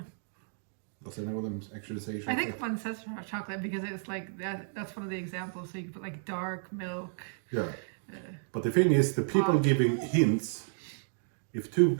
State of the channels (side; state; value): left; silent; digital silence